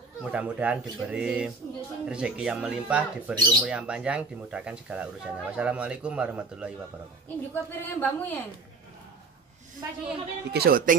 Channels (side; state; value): left; quieter; 4.1 dB